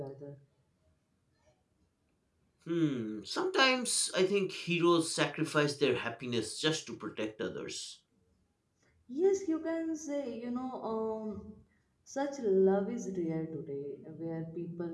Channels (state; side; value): identical; both; correlation 1.00